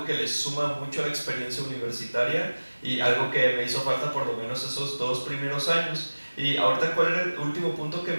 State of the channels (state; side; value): inverted; both; correlation -1.00